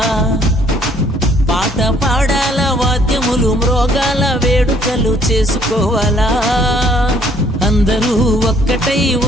పాట పాడాల వాద్యములు మ్రోగాల వేడుకలు చేసుకోవాలా అందరూ ఒక్కటై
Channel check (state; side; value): normal; both; correlation 0.62